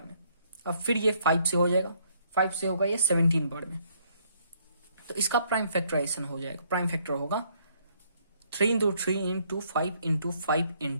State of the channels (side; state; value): both; inverted; correlation -0.67